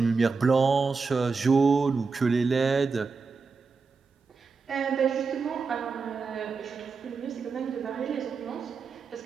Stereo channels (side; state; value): left; quieter; 4.7 dB